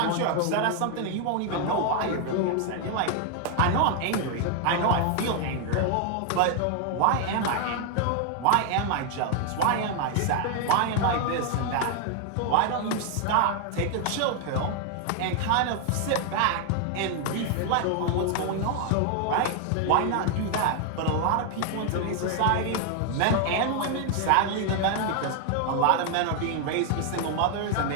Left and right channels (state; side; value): different; both; correlation 0.00